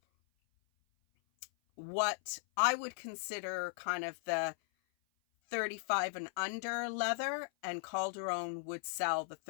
what I would consider kind of the 35 and under leather, and Calderon would sell the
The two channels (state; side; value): silent; right; 53 dB below the other